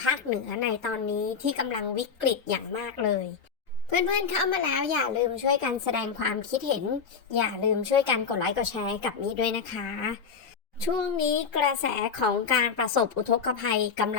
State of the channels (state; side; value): quieter; right; 6.0 dB